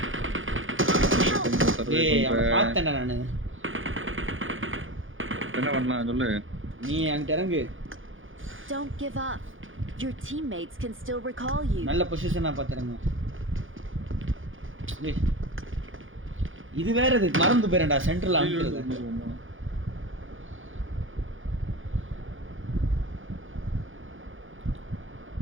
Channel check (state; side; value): late; left; 0.58 ms